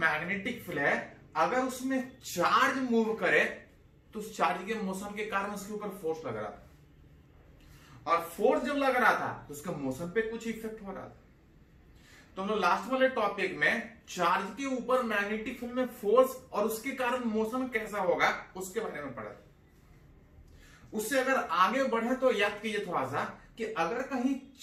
फील्ड है, अगर उसमें चार्ज मूव करे तो उस चार्ज के मोशन के कारण उसके ऊपर फोर्स लग रहा था, और फोर्स जब लग रहा था तो उसके मोशन पे कुछ इफेक्ट हो रहा था। तो हम लोग लास्ट वाले टॉपिक में चार्ज के ऊपर मैग्नेटिक फील्ड में फोर्स और उसके कारण मोशन कैसा होगा उसके बारे में पढ़ा। उससे अगर आगे बढ़े तो याद कीजिए थोड़ा सा कि अगर कहीं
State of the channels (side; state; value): both; identical; correlation 1.00